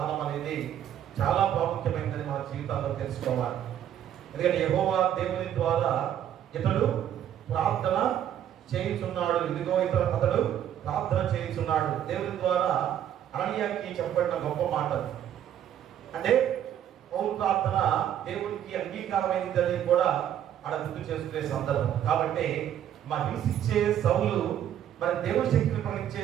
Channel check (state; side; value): quieter; left; 10.4 dB